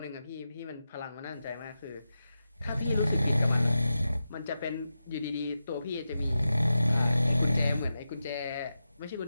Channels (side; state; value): both; inverted; correlation -0.90